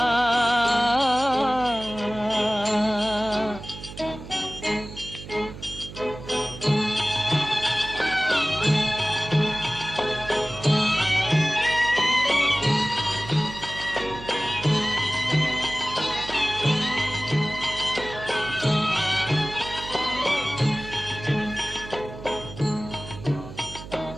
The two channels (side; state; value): right; noise; hum, 13 dB below the sound